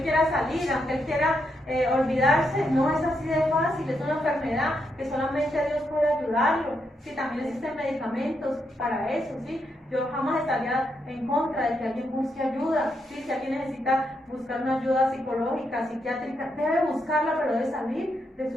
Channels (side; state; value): both; normal; correlation 0.80